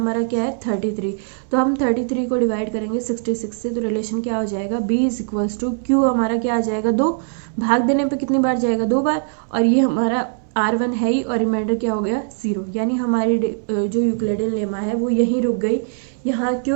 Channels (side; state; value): left; silent; 65 dB below the other